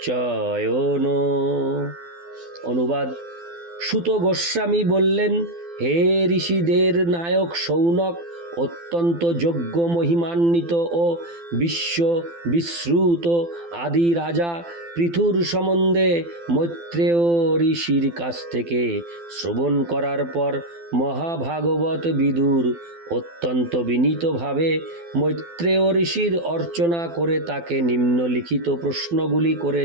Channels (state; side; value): late; left; 12 ms